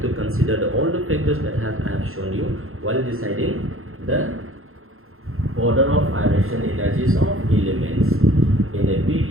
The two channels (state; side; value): late; left; 0.61 ms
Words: to consider all the factors that I have shown you while deciding the order of ionization energies of elements. in a